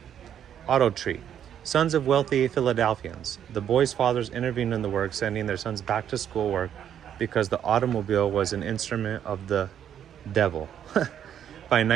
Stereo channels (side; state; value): left; quieter; 9.5 dB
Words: Tree. Sons of wealthy Philadelphians. The boys' fathers intervened in the work, sending their sons back to school work because the automobile was an instrument of the devil. By